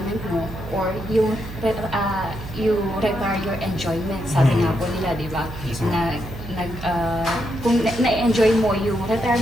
mo or you retire your enjoyment. Sabi nga po nila, di ba? Yes, Na, kung na-enjoy mo yung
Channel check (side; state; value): right; noise; hum, 11 dB below the sound